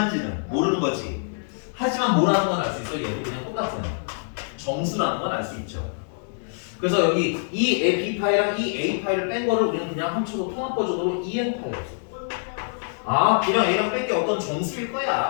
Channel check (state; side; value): silent; right; digital silence